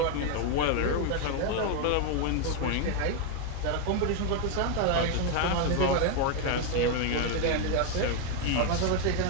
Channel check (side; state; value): both; different; correlation 0.01